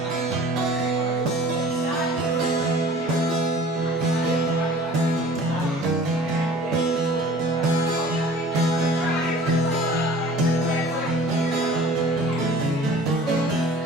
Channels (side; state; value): both; normal; correlation 0.46